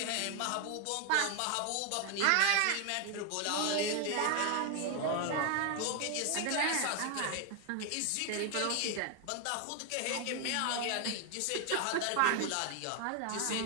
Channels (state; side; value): different; both; correlation 0.01